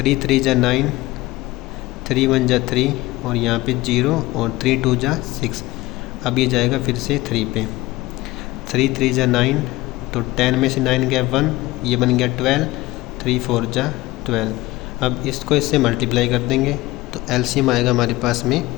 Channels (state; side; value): quieter; right; 19.0 dB